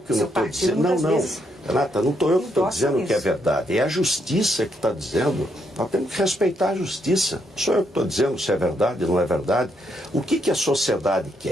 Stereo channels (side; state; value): both; normal; correlation 0.76